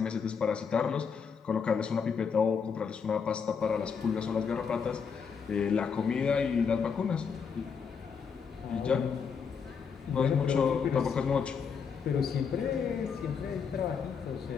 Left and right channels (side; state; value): right; quieter; 6.2 dB